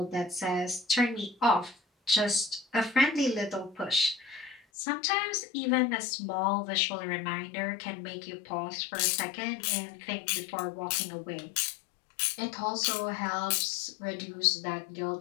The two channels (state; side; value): drops out; right; at 4.6 s